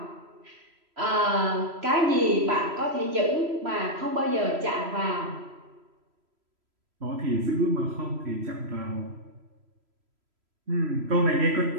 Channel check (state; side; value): late; left; 3.0 ms